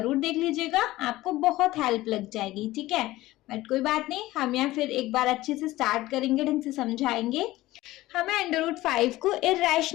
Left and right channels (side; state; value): right; quieter; 17.3 dB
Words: देख लीजिएगा, आपको बहुत हेल्प लग जाएगी। ठीक है, बट कोई बात नहीं, हम यहाँ फिर एक बार अच्छे से स्टार्ट करेंगे, ढंग से समझाएंगे। हमें अंडर रूट 5 को